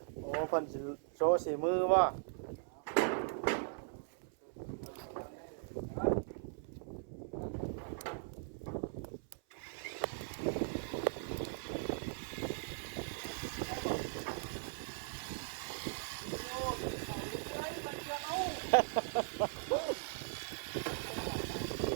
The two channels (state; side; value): silent; left; 52 dB below the other